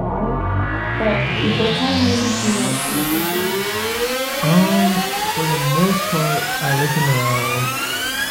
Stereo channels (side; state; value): both; identical; correlation 1.00